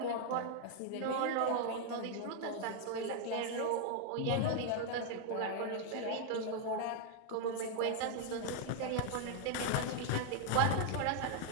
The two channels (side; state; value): both; different; correlation 0.00